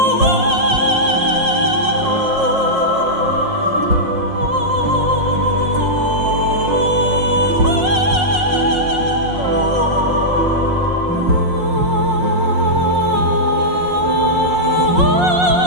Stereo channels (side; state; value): left; late; 5.5 ms